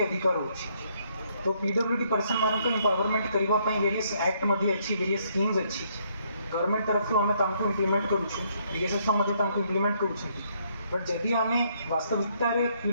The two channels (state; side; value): inverted; both; correlation -0.70